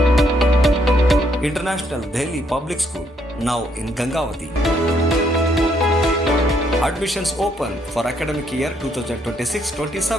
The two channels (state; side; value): normal; both; correlation 0.72